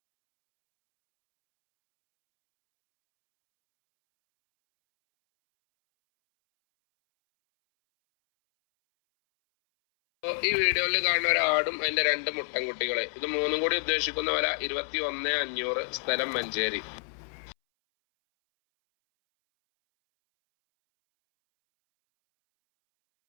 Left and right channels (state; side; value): silent; right; 59 dB below the other